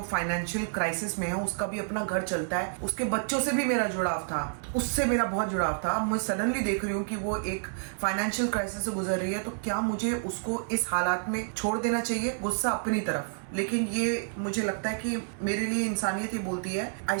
फाइनेंशियल क्राइसिस में है, उसका भी अपना घर चलता है, उसके बच्चों से भी मेरा जुड़ाव था, उससे मेरा बहुत जुड़ाव था। मैं सडनली देख रही हूँ कि वो एक फाइनेंशियल क्राइसिस से गुजर रही है, तो क्या मुझे उसको इस हालात में छोड़ देना चाहिए? गुस्सा अपनी तरफ, लेकिन ये मुझे लगता है कि मेरे लिए इंसानियत ये बोलती है I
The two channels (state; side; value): silent; left; digital silence